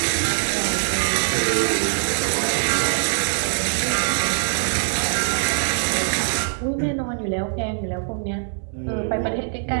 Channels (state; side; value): silent; left; digital silence